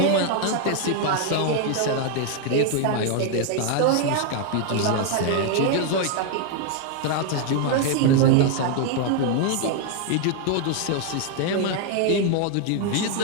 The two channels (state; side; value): different; both; correlation 0.00